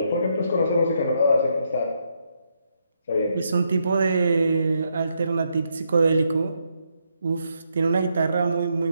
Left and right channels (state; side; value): inverted; both; correlation -0.78